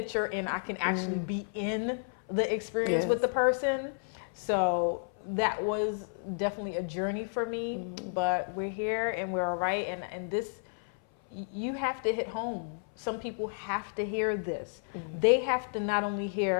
and I can actually be in the experience with the person. So that was definitely a journey for me, but we're here and we're all right. And this, you have to hit home. Some people have to hear this. They have to not only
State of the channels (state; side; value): silent; right; 57 dB below the other